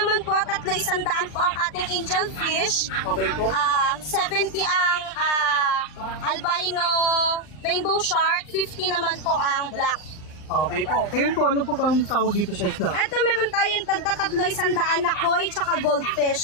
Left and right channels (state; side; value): late; right; 39 ms